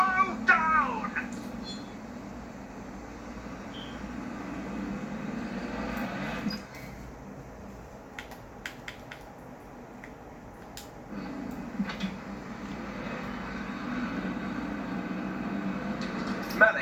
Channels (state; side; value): identical; both; correlation 1.00